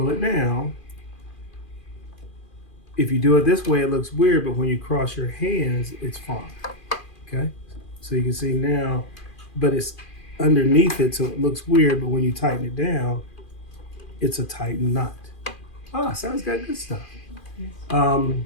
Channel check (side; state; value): right; late; 2.4 ms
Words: it down, if you do it this way, it looks weird, but when you cross your hands, it's fine, okay? So you can see now, but it's underneath it, so it looks weird, but when you tighten it down, it's a tightened knot. Ah, sounds got good stuff.